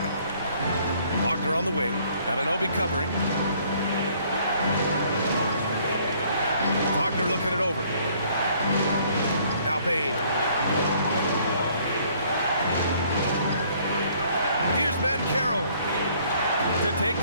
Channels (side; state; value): both; inverted; correlation -0.61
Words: Wagner on the wing. Anunoby covering. Wagner looking it over. Now Bane. Here's Banchero to take